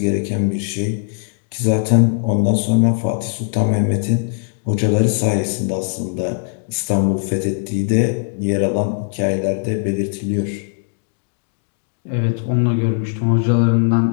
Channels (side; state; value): right; silent; digital silence